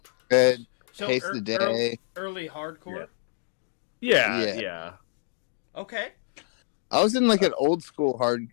Good. So Taste the Day. early hardcore. Yeah. Okay. I was in like an old school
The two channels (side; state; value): right; silent; digital silence